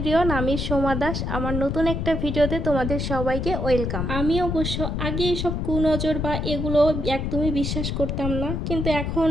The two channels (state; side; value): noise; left; rumble, 2 dB below the sound